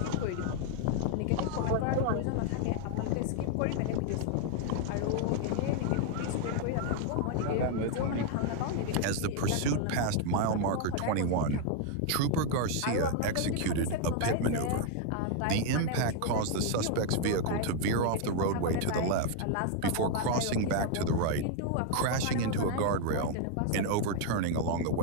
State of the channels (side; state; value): both; different; correlation 0.00